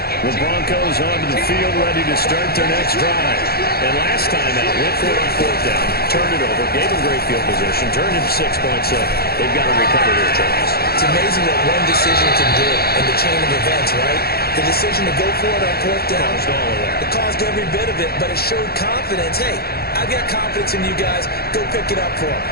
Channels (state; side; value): late; right; 0.45 ms